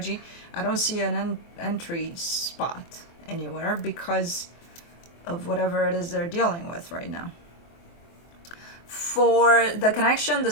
I don't see an entry spot anywhere because of whatever it is they're dealing with right now. For the connection, the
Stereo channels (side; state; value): right; late; 24 ms